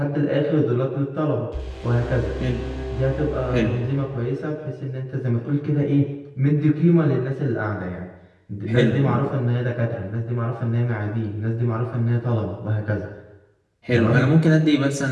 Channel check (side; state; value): both; identical; correlation 1.00